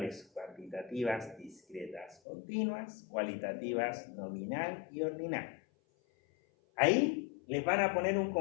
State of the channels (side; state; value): right; drops out; at 2.2 s